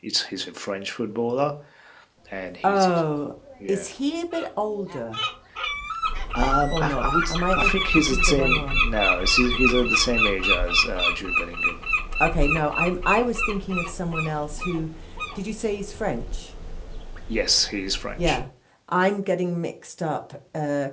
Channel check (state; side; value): identical; both; correlation 1.00